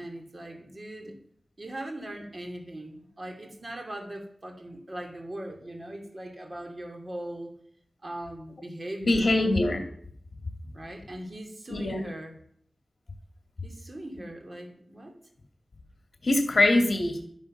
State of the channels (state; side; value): normal; both; correlation 0.95